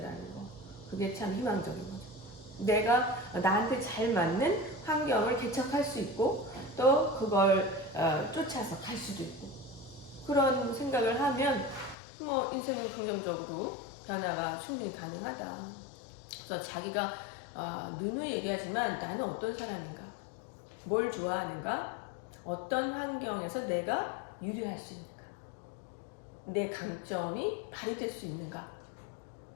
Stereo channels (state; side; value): drops out; right; at 12.0 s